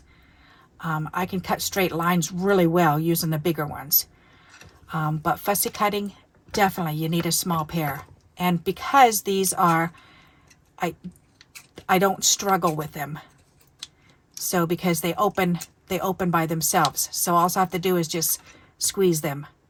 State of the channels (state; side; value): identical; both; correlation 1.00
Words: I can cut straight lines really well using the bigger ones. But fussy cutting, definitely you need a small pair. And because these are, I don't struggle with them. So because they open by themselves. So all I have to do is just squeeze them